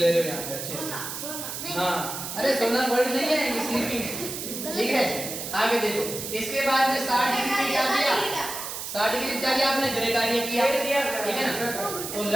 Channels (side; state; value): right; noise; hiss, 7 dB below the sound